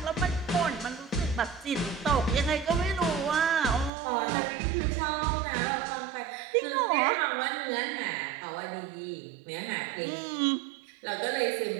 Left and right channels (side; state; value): left; drops out; at 3.9 s